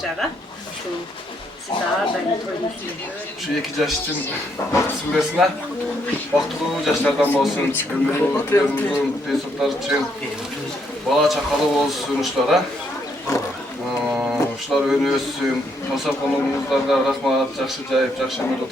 Şu siz ağırdan koymuşsunuz. Şu 2 yaş için sizgesine vaktılı yaşlardan olsun, ömrü uzun pesutlar için bala çakalı olsun uşlara. Uşlar önü össün, tasarkonumuzlarga rahmat, жақсы жайып, жақсы өмір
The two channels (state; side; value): normal; both; correlation 0.74